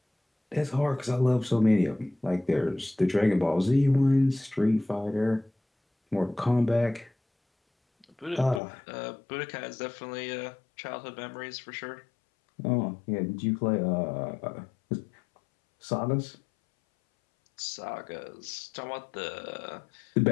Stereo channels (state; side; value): drops out; right; at 8.6 s